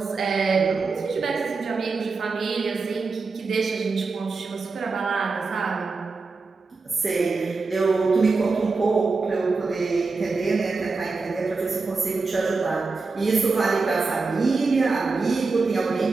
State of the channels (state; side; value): quieter; left; 4.2 dB